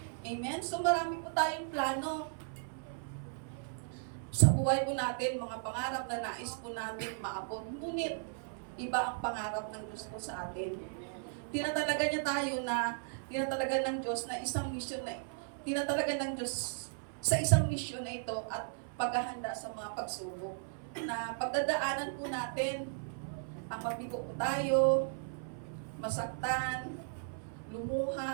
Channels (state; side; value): silent; left; 54 dB below the other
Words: Amen? So marami po tayong plano sa buhay po natin, mga pangarap na nais po natin maabot. Ngunit, iba ang pangarap ng Diyos po sa atin. Tinatalaga ng Diyos na isang misyon sa isang misyon na ito at paghahanda sa mga pagsubok. Na pagdadaanan po natin, ang mabigo po tayo, masaktan,